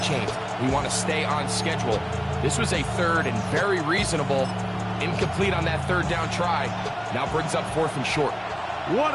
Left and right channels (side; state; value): both; identical; correlation 1.00